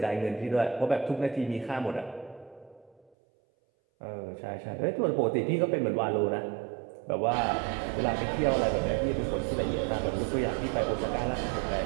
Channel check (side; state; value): left; drops out; at 3.1 s